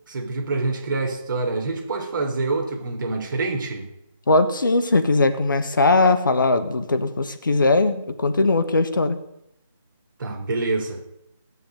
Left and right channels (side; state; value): both; inverted; correlation -0.66